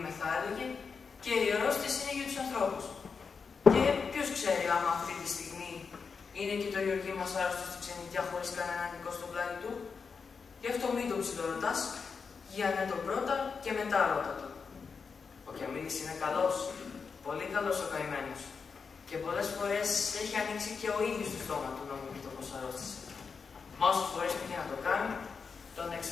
θα έλεγε, και η αρρώστιες είναι για τους ανθρώπους. Και ποιος ξέρει άμα αυτή τη στιγμή είναι και το Γεωργί μας άρρωστο στη ξενιτιά χωρίς κανέναν νικό στο πλάι του. Γι' αυτό μην το ψιλορωτάς, για ναι τον πρώτα και μετά ρώτα το. Ο Κιαμίλης είναι καλός, πολύ καλός ο καημένος. Και πολλές φορές έχει ανοίξει και ο ίδιος το στόμα του να μου πει το πως αρρώστησε. Μα όσες φορές πήγε να το κάνει, τον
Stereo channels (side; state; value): right; quieter; 5.4 dB